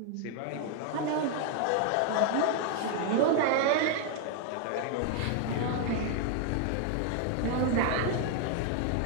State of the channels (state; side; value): different; both; correlation 0.00